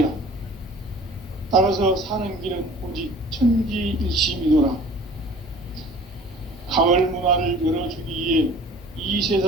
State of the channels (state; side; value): normal; both; correlation 0.47